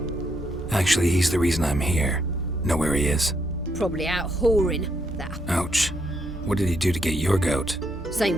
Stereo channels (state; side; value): normal; both; correlation 0.76